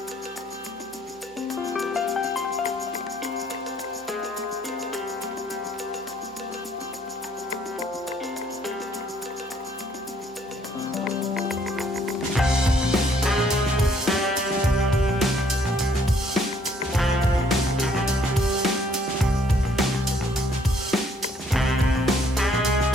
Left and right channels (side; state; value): both; normal; correlation 0.64